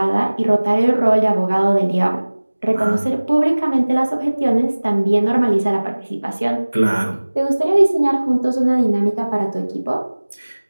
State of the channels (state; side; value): inverted; both; correlation -1.00